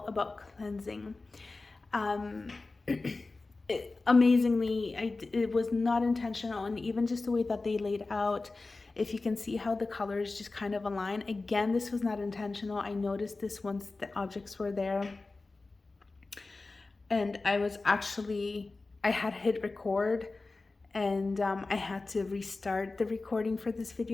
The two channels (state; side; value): quieter; right; 3.5 dB